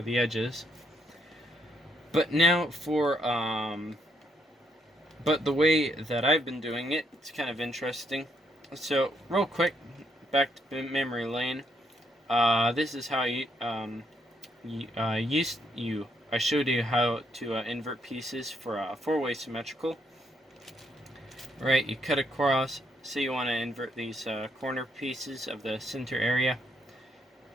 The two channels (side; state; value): both; normal; correlation 0.74